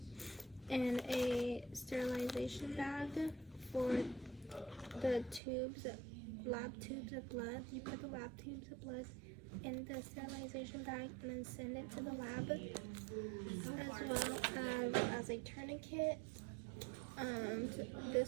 and a sterilization bag for the tubes, lab tubes of blood. You put the lab tubes of blood in the sterilization bag and then send it to the lab, as well as a tourniquet.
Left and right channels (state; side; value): drops out; left; at 5.4 s